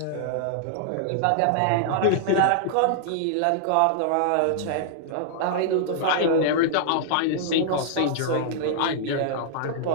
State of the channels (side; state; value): both; different; correlation -0.01